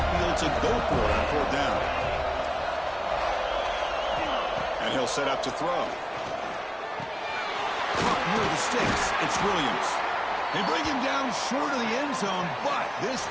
field to go for it on 4th down. And he'll set up to throw. Caught near the sticks. It's Williams. They bring him down short of the end zone, but this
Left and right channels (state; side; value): identical; both; correlation 1.00